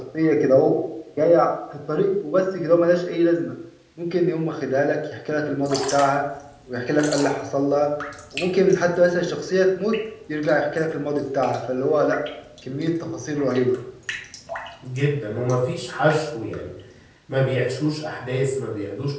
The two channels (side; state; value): both; identical; correlation 1.00